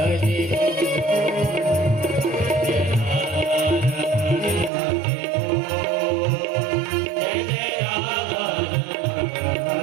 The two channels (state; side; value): drops out; left; at 4.7 s